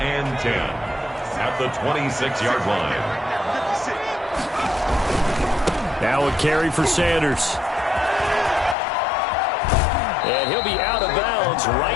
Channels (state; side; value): drops out; right; at 8.8 s